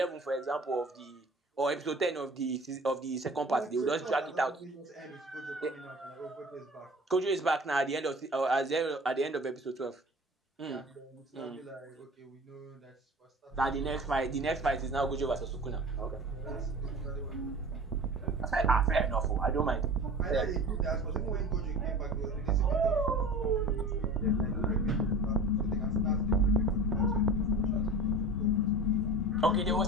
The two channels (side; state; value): both; normal; correlation 0.38